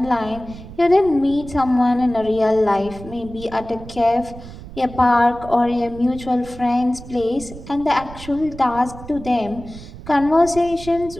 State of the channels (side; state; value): right; noise; rumble, 15 dB below the sound